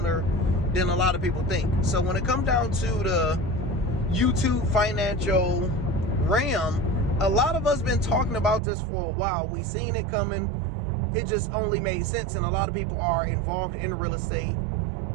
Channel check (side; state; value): left; drops out; at 8.6 s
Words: than a lot of people think. So when it comes down to the YouTube financial realm, a lot of us been talking about this for a while. We seen it coming. It just only made sense, and a lot of people are involved in real estate